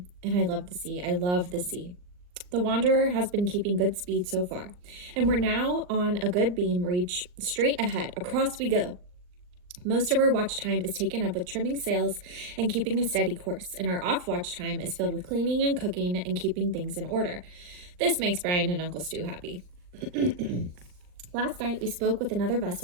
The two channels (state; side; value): late; left; 39 ms